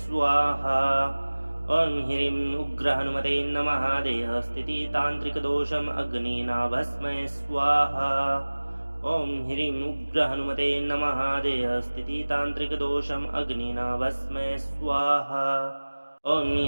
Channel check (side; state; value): both; inverted; correlation -1.00